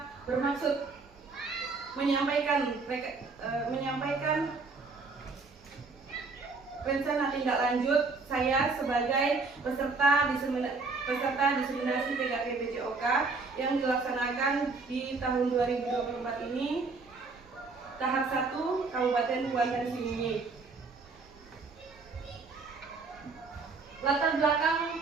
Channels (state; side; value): quieter; left; 4.1 dB